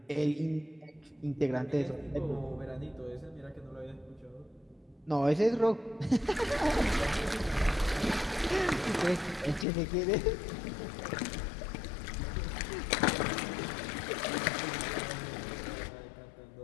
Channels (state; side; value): drops out; right; at 9.7 s